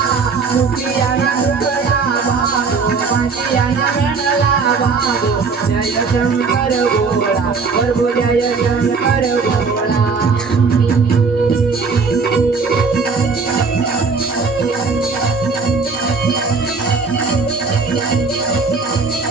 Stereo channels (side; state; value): left; quieter; 4.7 dB